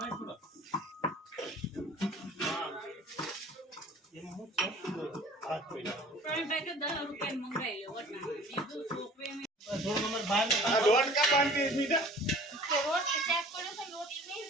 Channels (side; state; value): both; normal; correlation 0.48